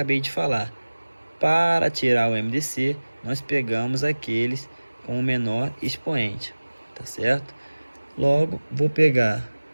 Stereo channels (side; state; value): both; inverted; correlation -1.00